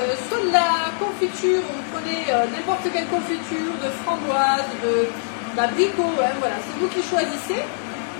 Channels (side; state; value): right; silent; digital silence